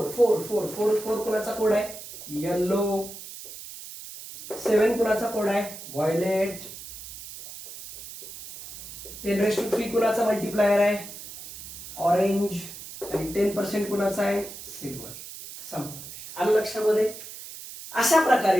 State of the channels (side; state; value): right; noise; hiss, 13 dB below the sound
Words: कोणाचा कोड आहे येलो, 7 कुणाचा कोड आहे व्हायलेट, 10 raised to 3 कुणाचा मल्टिप्लायर आहे ऑरेंज आणि 10% कुणाचा आहे सिल्वर. आलं लक्षामध्ये. अशा